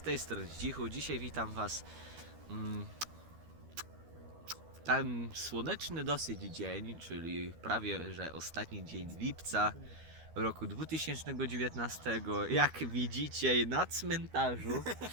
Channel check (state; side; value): late; left; 13 ms